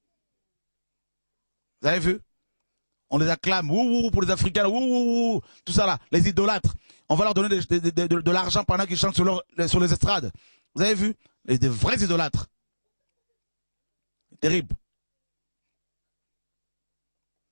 Vous avez vu? On les acclame, ouh, pour les Africains, ouh, tout ça là, les idolâtres. On va leur donner de l'argent pendant qu'ils chantent sur les estrades. Vous avez vu? Des vrais idolâtres. Terrible.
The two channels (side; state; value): both; inverted; correlation -1.00